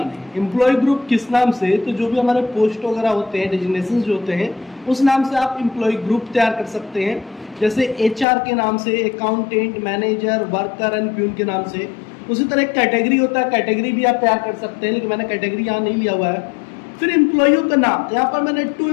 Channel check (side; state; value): right; drops out; at 8.2 s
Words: हैं। एम्प्लॉय ग्रुप किस नाम से, तो जो भी हमारे पोस्ट वगैरह होते हैं, डेजिग्नेशन जो होते हैं, उस नाम से आप एम्प्लॉय ग्रुप तैयार कर सकते हैं। जैसे एचआर के नाम से, accountant, manager, worker and peon के नाम से। उसी तरह कैटेगरी होता है, कैटेगरी भी आप तैयार कर सकते हैं, लेकिन मैंने कैटेगरी यहाँ नहीं लिया हुआ है। फिर एम्प्लॉइयों का नाम, यहाँ पर मैंने 2